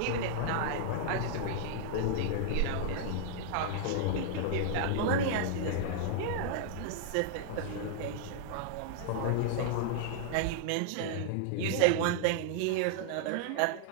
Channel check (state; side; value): different; both; correlation -0.01